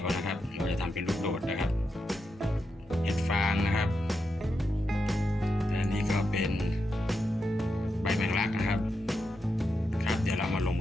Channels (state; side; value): normal; both; correlation 0.86